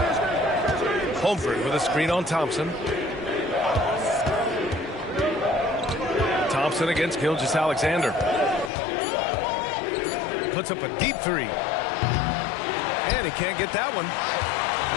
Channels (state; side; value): drops out; right; at 8.7 s